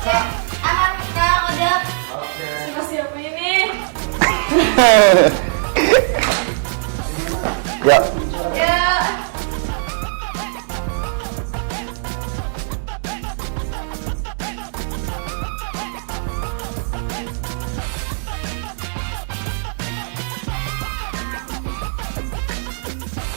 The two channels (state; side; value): silent; left; 65 dB below the other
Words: Cek. Aman sekarang udah. Siapa ini? Ya. Ya.